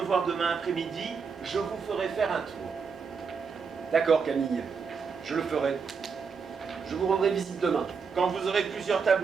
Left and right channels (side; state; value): left; quieter; 5.6 dB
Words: voir demain après-midi, je vous ferai faire un tour. D'accord, Camille. Je le ferai. Je vous rendrai visite demain. Quand vous aurez plusieurs